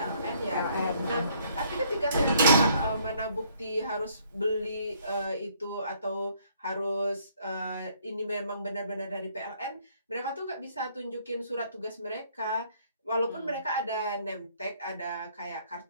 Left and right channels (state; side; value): inverted; both; correlation -0.64